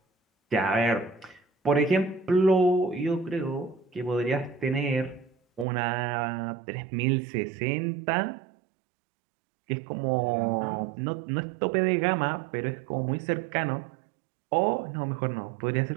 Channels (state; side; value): drops out; left; at 5.7 s